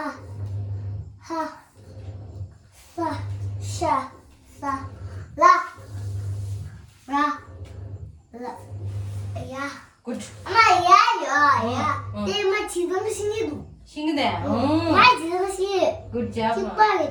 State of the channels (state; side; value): identical; both; correlation 1.00